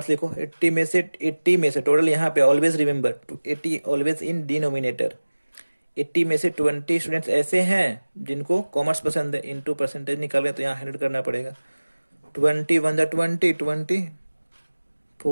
लिखो। 80 में से टोटल यहाँ पे always remember 80 always in denominator. 80 में से 20 स्टूडेंट्स ऐसे हैं जिनको कॉमर्स पसंद है, इनटू परसेंटेज निकालें तो यहाँ 100 करना पड़ेगा। 20 1 जा 20, 20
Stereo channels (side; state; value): both; inverted; correlation -1.00